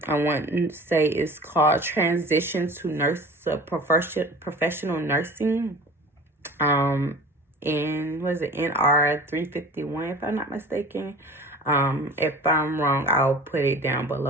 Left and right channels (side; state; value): both; normal; correlation 0.41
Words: want to say it's called Transition to Professional Nursing. In, what is it, NR 351, if I'm not mistaken. If I'm wrong, I'll put it down